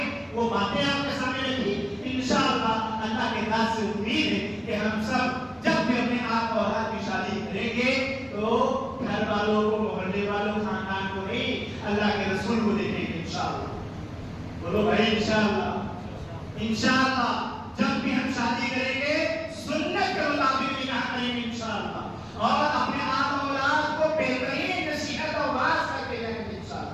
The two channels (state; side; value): identical; both; correlation 1.00